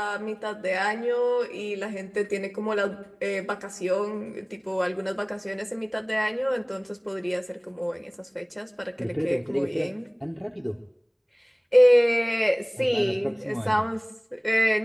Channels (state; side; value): identical; both; correlation 1.00